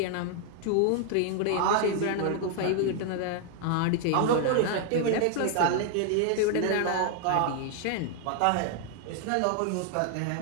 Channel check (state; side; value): different; both; correlation 0.00